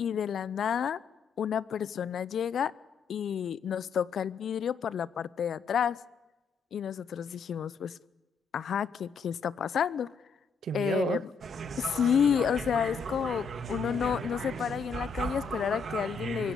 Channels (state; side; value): quieter; right; 5.7 dB